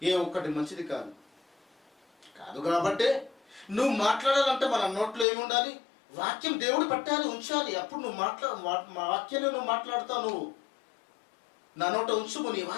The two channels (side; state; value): right; drops out; at 5.2 s